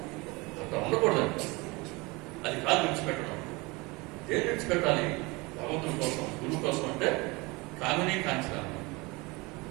అట్లా ఉండకూడదు. అది కాదు విడిచిపెట్టడం. ఏం విడిచిపెట్టాలి? భగవంతుడి కోసం, గురువు కోసం. అంటే కామిని కాంచన,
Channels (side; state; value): left; quieter; 25.0 dB